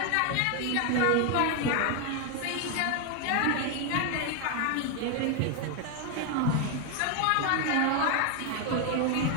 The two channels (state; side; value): different; both; correlation 0.01